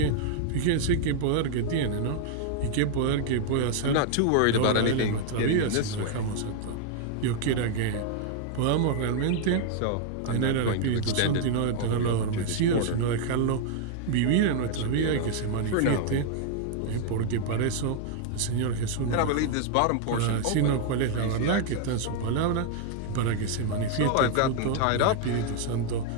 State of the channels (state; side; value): different; both; correlation 0.00